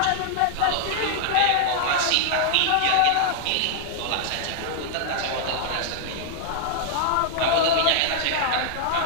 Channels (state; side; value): different; both; correlation -0.01